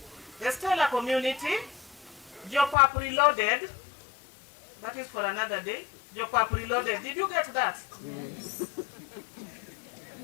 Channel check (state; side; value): drops out; right; at 2.8 s